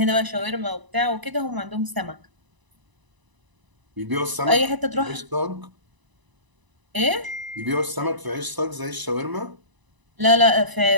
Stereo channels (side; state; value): left; late; 1.0 ms